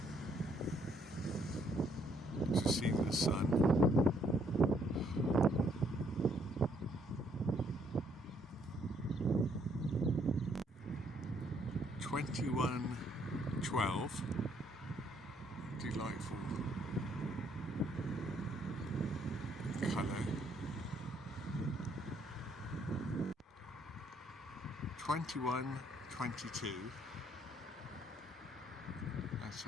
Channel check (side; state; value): both; normal; correlation 0.68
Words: to see the sun. 21:12, delightful colour. 21:22, and